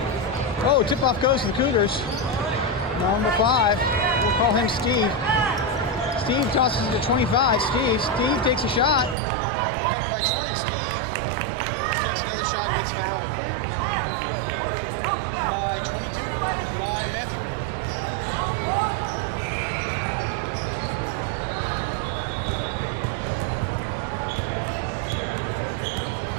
Oh, tip-off goes to the Cougars. Number 5, we'll call him Steve. Steve tosses it to 25. Steve takes a shot. Recovered by 20. Steve takes another shot and gets fouled by 22 by Matthew.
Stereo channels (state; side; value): drops out; left; at 9.2 s